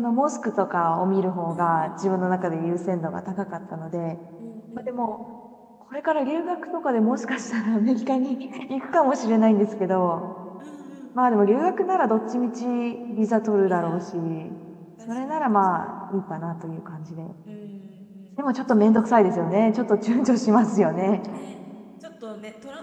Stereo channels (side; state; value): both; identical; correlation 1.00